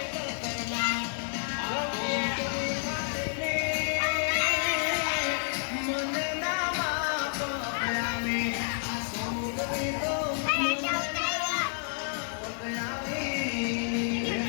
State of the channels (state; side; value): silent; right; digital silence